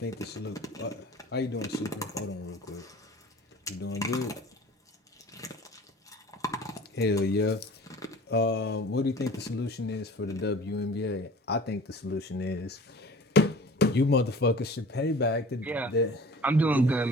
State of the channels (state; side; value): normal; both; correlation 0.44